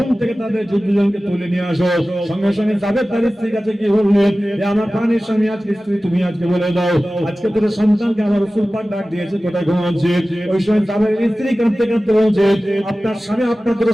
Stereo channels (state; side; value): normal; both; correlation 0.96